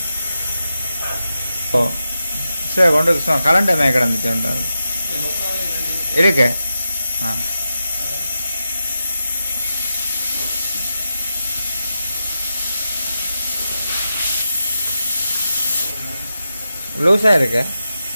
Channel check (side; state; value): both; inverted; correlation -0.89